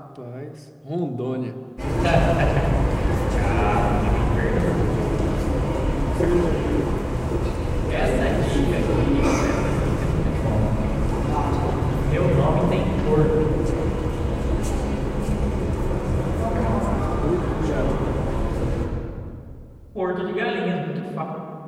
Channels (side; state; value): both; identical; correlation 1.00